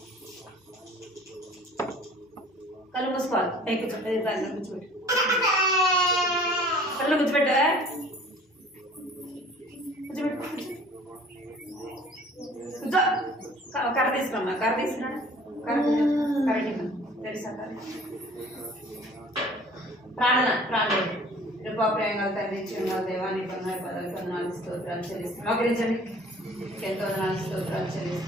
కళ్ళు మూసుకోవాలి. పైకి కూర్చోబెట్టు. కళ్ళు కూర్చోబెట్టు. కూర్చో. కర్ర తీసుకురమ్మా. కర్ర తీసుకురా. కరెక్ట్ తెలుసా? ప్రాణం ప్రేమలు తండ్రి చిన్న దేవాన్ని కొన్నాడు పదవి కొందనాలు స్తోత్రాలు చెల్లిస్తున్నాం. మోకరించండి. ఎంతో వందనాలు స్తోత్రాలు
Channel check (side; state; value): both; normal; correlation 0.50